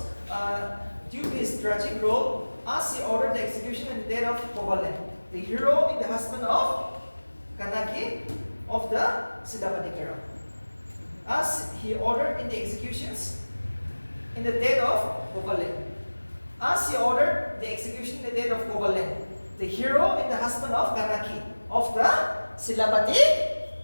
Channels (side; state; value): both; inverted; correlation -1.00